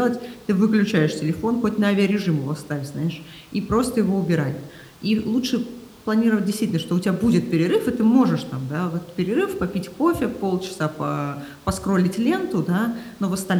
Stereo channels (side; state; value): both; identical; correlation 1.00